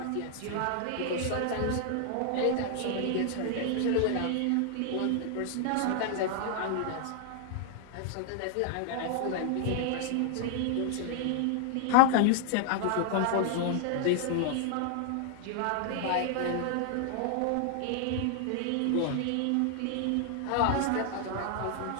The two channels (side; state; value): both; different; correlation 0.00